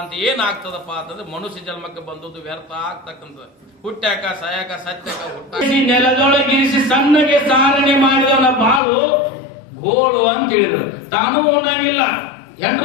ಏನಾಗ್ತದಪ್ಪ ಅಂತಂದ್ರೆ ಮನುಷ್ಯ ಜನ್ಮಕ್ಕೆ ಬಂದದ್ದು ವ್ಯರ್ಥ ಆಗ್ತಕ್ಕಂಥದ್ದು. ಹುಟ್ಟ್ಯಾಕ ಸಾಯಾಕ ಸತ್ಯಾಕ ಹುಟ್ಟ ನೆಲದೊಳಗಿರಿಸಿ ಸಣ್ಣಗೆ ಸಾರಣೆ ಮಾಡಿದವನ ಬಾಳು ಗೋಳು ಅಂತ ಹೇಳಿದ್ರು. ತಾನೂ ಉಣ್ಣಂಗಿಲ್ಲ,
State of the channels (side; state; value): right; drops out; at 8.8 s